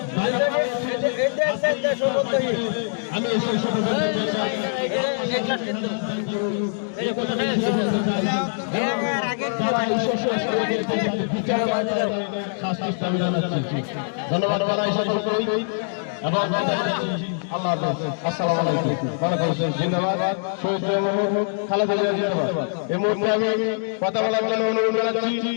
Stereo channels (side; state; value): right; silent; digital silence